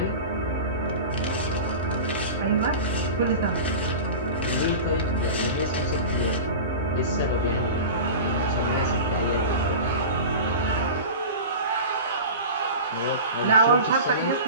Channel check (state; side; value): inverted; both; correlation -0.32